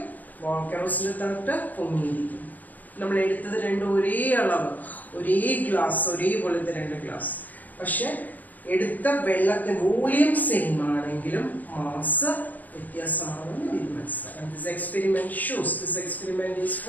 കെറോസിന്റെ തട്ട് പൊങ്ങിയിരിക്കും. നമ്മൾ എടുത്തത് രണ്ടും ഒരേ അളവ്, ഒരേ ഗ്ലാസ്, ഒരേപോലത്തെ രണ്ട് ഗ്ലാസ്. പക്ഷെ എടുത്ത വെള്ളത്തിന്റെ വോളിയം സെയിം ആണെങ്കിലും മാസ് വ്യത്യാസമാണെന്ന് ഇത് മനസ്സിലാക്കാം. This experiment shows. This experiment is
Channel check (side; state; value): right; late; 0.081 ms